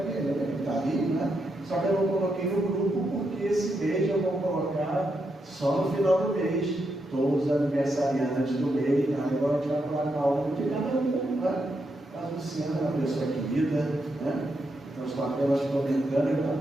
ele? Ele está ali, né? Só que eu não coloquei no grupo, porque esse mês eu vou colocar só no final do mês, todos os aniversariantes do mês. Agora a gente vai colocar um de cada um, né? A Luciana é uma pessoa querida, né? Então estou apenas comentando, eu falo,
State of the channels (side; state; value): both; normal; correlation 0.82